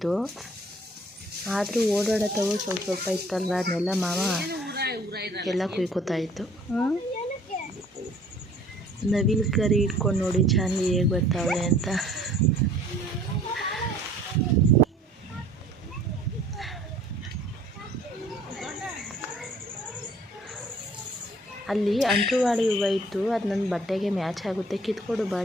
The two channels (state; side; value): normal; both; correlation 0.55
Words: ಆದರೂ ಓಡಾಡತ್ತವು ಸ್ವಲ್ಪ ಸ್ವಲ್ಪ ಇತ್ತಲ್ವ, ಅದನ್ನೆಲ್ಲ ಮಾವ ಎಲ್ಲ ಕುಯ್ಕೋತಾ ಇತ್ತು. ನವಿಲು ಕರಿ ಇಟ್ಕೊಂಡು ನೋಡಿ ಚಾಂದಿ ಹೇಗೆ ಬರ್ತಾವೆ ಅಂತ. ಅಲ್ಲಿ ಅಂಟುವಾಡಿ ಹೂವು ಇತ್ತು, ಅದು ನನ್ನ ಬಟ್ಟೆಗೆ ಮ್ಯಾಚ್ ಆಗುತ್ತೆ, ಕಿತ್ಕೊಡು